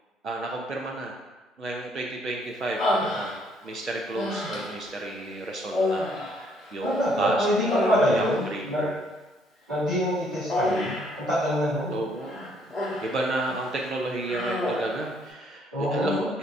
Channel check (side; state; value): both; normal; correlation 0.67